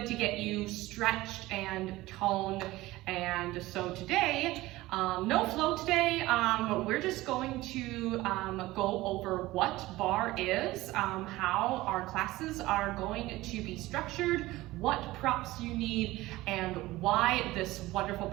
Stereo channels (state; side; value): quieter; left; 18.2 dB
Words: to get you stretched and toned. And so today, no flow today, we're just going to go over what barre is, how our classes are going to be structured, what props you need, and why this wonderful